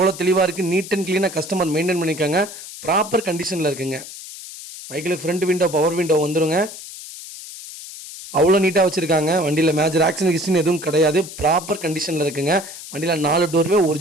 தெளிவாக இருக்குது. நீட் அண்ட் க்ளீனாக கஸ்டமர் மெயின்டைன் பண்ணிக்காங்க. ப்ராப்பர் கண்டிஷனில் இருக்குங்க. வெஹிக்கிளுக்கு ஃப்ரண்ட் விண்டோ, பவர் விண்டோ வந்துருங்க. அவ்வளோ நீட்டாக வச்சுருக்காங்க. வண்டியில் மேஜர் ஆக்சிடென்ட் ஹிஸ்ட்ரின்னு எதுவும் கிடையாது. ப்ராப்பர் கண்டிஷனில் இருக்குங்க. வண்டியில் 4 டோருமே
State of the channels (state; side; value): noise; left; hiss, 13 dB below the sound